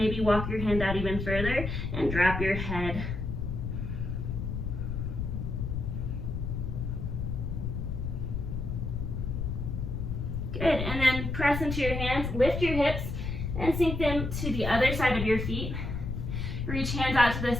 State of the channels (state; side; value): noise; left; rumble, 3 dB below the sound